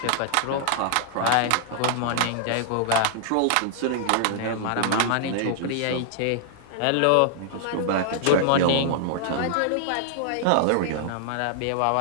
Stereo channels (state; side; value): different; both; correlation -0.01